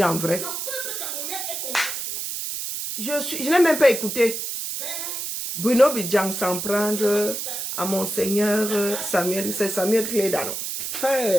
en vrai. Le peuple camerounais est concerté. Je n'ai même pas écouté. Bruno Bidjang s'en prendre à Monseigneur Samuel. C'est Samuel Cléda, non?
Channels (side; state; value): right; noise; hiss, 4 dB below the sound